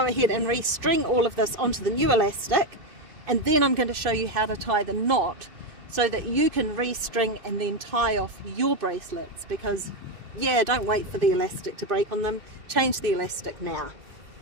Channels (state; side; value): late; left; 2.5 ms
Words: ahead and restring all of this onto the new elastic, and then I'm going to show you how to tie the knot so that you can restring and then tie off your bracelets, because yeah, don't wait for the elastic to break on them, change the elastic now.